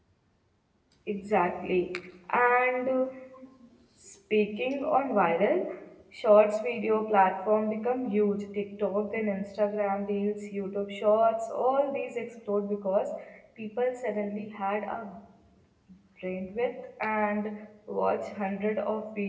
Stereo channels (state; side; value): identical; both; correlation 1.00